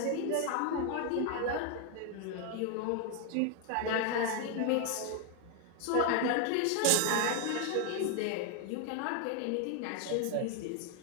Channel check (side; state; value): both; different; correlation 0.01